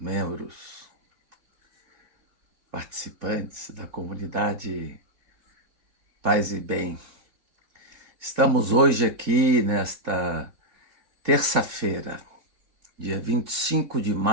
participantes da comunidade Paz e Bem, estamos hoje aqui nesta terça-feira, dia 25 de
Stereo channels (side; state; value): left; late; 3.2 ms